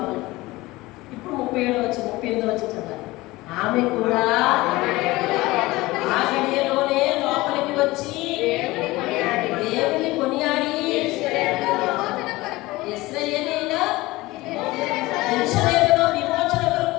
ఇప్పుడు 38 వచ్చి చదవాలి. ఆమె కూడా ఆ గడియలోనే లోపలికి వచ్చి దేవుని కొనియాడి యెరూషలేములో విమోచన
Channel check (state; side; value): quieter; right; 19.9 dB